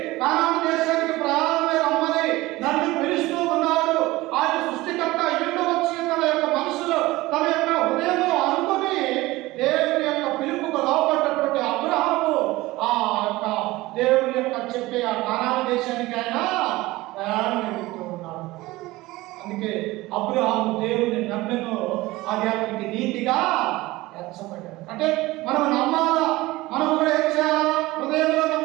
కానాను దేశానికి ప్రయాణమై రమ్మని నన్ను పిలుస్తూ ఉన్నాడు. ఆయన సృష్టికర్త ఇంటి వచ్చి తన యొక్క మనసులో తన యొక్క హృదయంలో అనుకుని దేవుని యొక్క పిలుపుకు లోపడ్డటువంటి అబ్రహాము ఆ యొక్క దేవుని యొక్క చెప్పే ఆ కానాను దేశానికి ఆయన ప్రయాణం వెళ్తూ ఉన్నాడు. అందుకే అబ్రహాము దేవుని నమ్మెను, అది అతనికి నీతిగా ఎంచబడ్డాడు. అంటే మనం నమ్మాలా, మనం కూడా ఏం చేయాలా? హృదయంలో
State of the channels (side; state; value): left; quieter; 19.3 dB